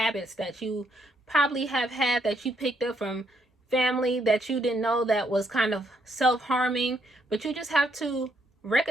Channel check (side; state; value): both; normal; correlation 0.74